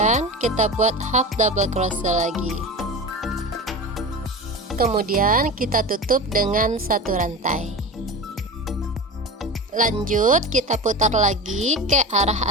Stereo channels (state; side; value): normal; both; correlation 0.29